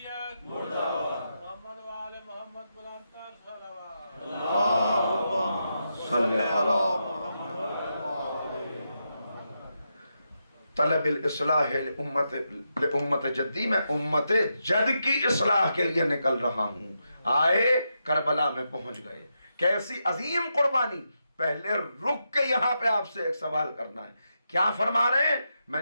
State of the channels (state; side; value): inverted; both; correlation -0.85